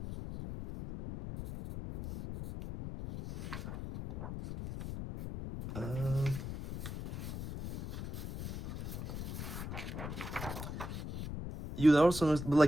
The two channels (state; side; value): noise; left; rumble, 7 dB below the sound